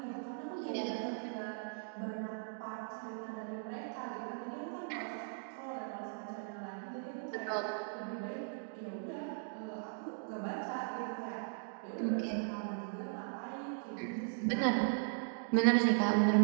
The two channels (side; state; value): left; silent; digital silence